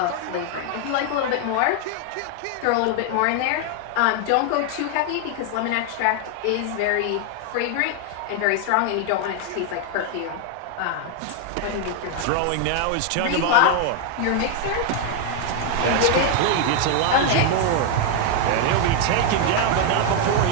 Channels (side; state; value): both; different; correlation 0.00